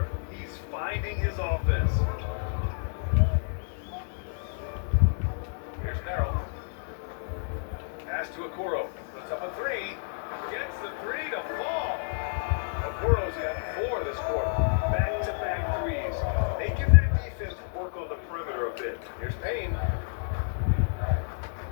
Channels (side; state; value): right; silent; digital silence